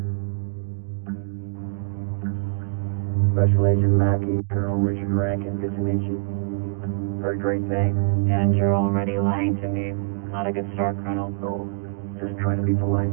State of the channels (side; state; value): left; silent; digital silence